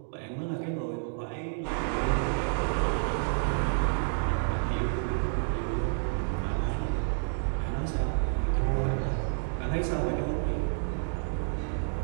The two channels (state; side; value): silent; left; digital silence